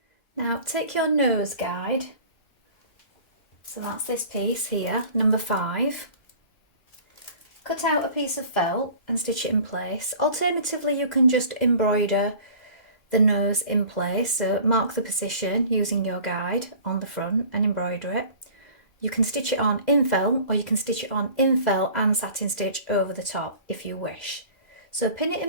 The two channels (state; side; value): late; right; 2.0 ms